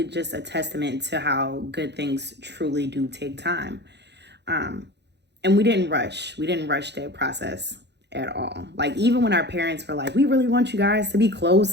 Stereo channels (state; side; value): late; left; 0.50 ms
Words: just a testament to how good things truly do take time. And we didn't rush. We didn't rush that process at all. Like, even when our parents were like, we really want you guys to be